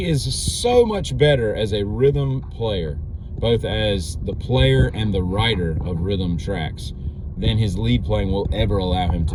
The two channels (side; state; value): both; identical; correlation 1.00